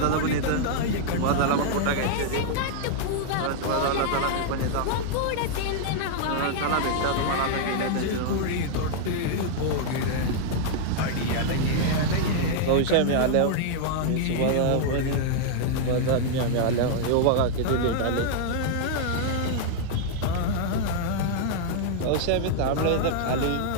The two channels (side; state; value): both; different; correlation -0.01